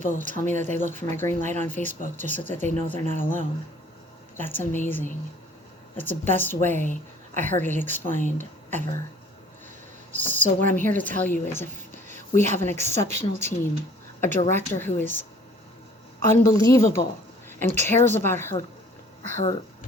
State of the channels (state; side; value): normal; both; correlation 0.53